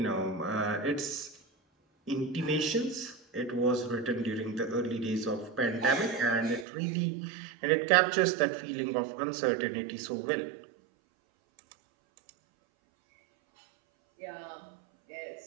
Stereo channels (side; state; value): left; drops out; at 6.7 s